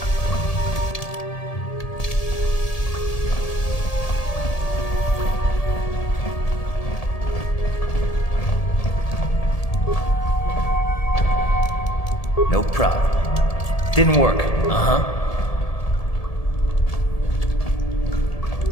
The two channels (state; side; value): late; right; 1.7 ms